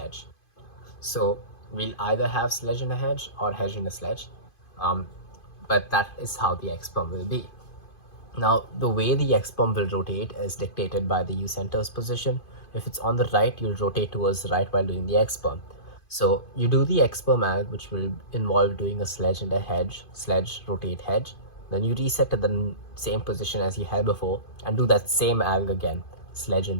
So we'll either have sledge in a hedge or hedge in a sledge, but that is how the X-perm will be. Now, the way the X-perm will rotate is dictated by the U center's position. If it's on the right, you'll rotate towards the right while doing the X-perm. So you do the X-perm alg, which will involve doing a sledge and a hedge, sledge, rotate, hedge. Then you reset to the same position as you had before and do that same alg again, sledge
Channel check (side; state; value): right; late; 2.5 ms